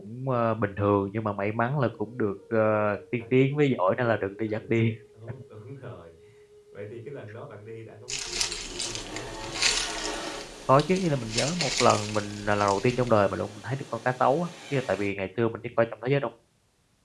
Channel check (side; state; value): both; identical; correlation 1.00